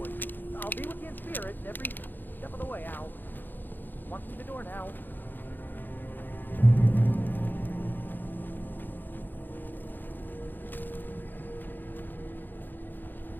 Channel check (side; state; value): right; late; 0.090 ms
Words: I'll be with you in spirit every step of the way, Al. Walk through the door now.